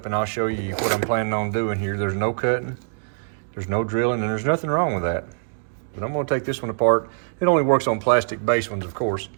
and I'll show you what I'm planning on doing here. There's no cutting, there's no drilling, and there's nothing wrong with that. But I'm going to take this one apart. It only works on plastic base ones, of course.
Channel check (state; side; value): silent; left; digital silence